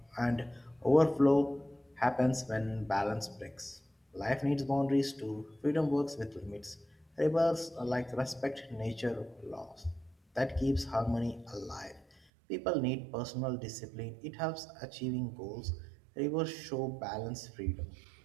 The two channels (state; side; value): drops out; left; at 12.2 s